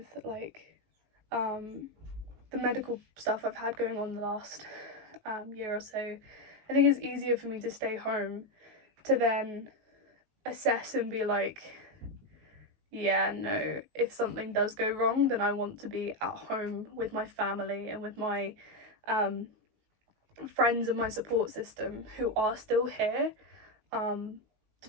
the medical stuff I've had going on the last year or so. I think it's easier for me to stay home to then assess and be like, yeah, no, if something does go wrong, then I want to be at home with my family and with my friends and my support system who are still here, to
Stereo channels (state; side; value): late; left; 19 ms